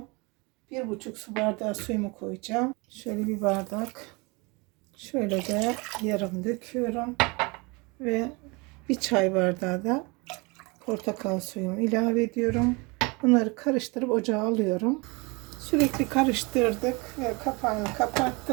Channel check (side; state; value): left; quieter; 27.5 dB